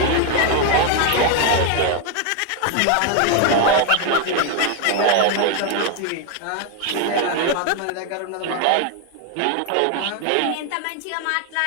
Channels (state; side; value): different; both; correlation 0.01